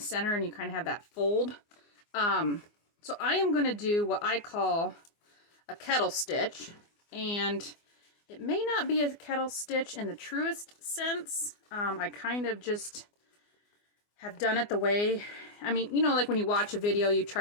and you kind of have that fold. So I am going to do what I call a kettle stitch, and it may not be a kettle stitch in the truest sense. I kind of just have done it the way, I mean, you know, like when you watch a video, you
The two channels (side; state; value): right; late; 24 ms